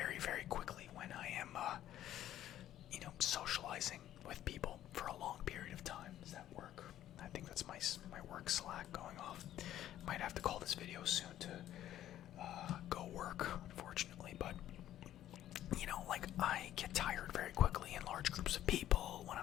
very quickly when I am, socializing with people for a long period of time. Does that work? I think that's my work Slack going off. Might have to call this video soon to go work, unfortunately. But like, I get tired very quickly in large groups of people when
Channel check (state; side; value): quieter; right; 12.4 dB